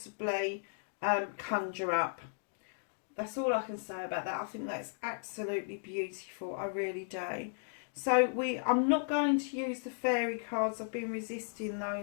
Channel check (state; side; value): silent; right; digital silence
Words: conjure up. That's all I can say about that. I think that's absolutely beautiful. I really do. So I'm not going to use the fairy cards. I've been resisting